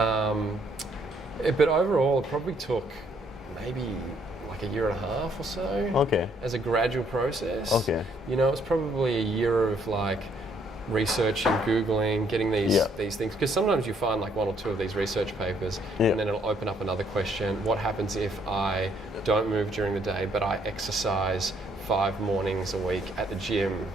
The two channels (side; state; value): both; normal; correlation 0.68